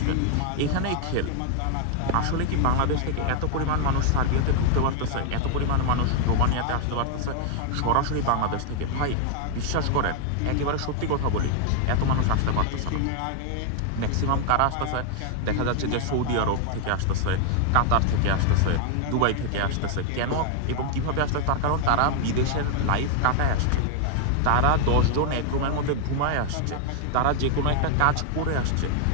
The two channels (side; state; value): both; different; correlation 0.00